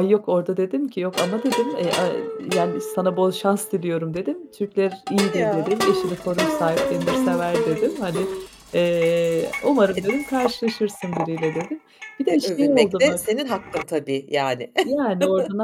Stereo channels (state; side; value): identical; both; correlation 1.00